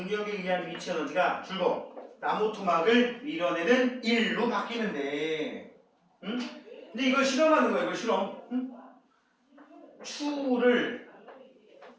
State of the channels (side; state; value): both; identical; correlation 1.00